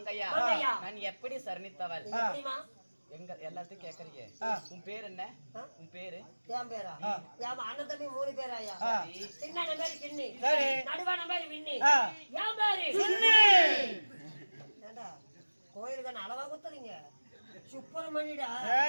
நான் எப்படி சரணித்தவள்? எங்க எல்லாத்தையும் கேக்குறீங்க. உன் பேர் என்ன? உன் பேரு? என் பேரா? என் அண்ணன் தம்பி 3 பேராயா? சின்ன பேரு கிண்ணி, நடுவான பேரு விண்ணி, என் பேரு சுண்ணி. ஏண்டா கோயிலுக்கு அளவா குத்துறீங்க? சுப்பிரமணியடா.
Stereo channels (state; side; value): inverted; both; correlation -1.00